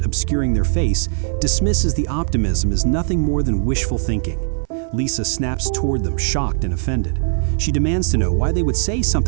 obscuring their face, dismisses the optimism as nothing more than wishful thinking. Lisa snaps toward them, shocked and offended. She demands to know why they would say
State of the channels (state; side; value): silent; left; 56 dB below the other